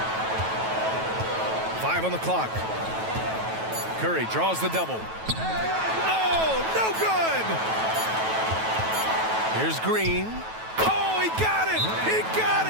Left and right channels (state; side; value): late; left; 9.2 ms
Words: 5 on the clock. Curry draws the double. Oh, no good! Here's Green. Oh, he got it! He got